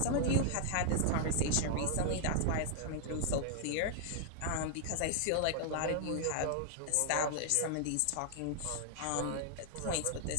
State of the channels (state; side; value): different; both; correlation -0.01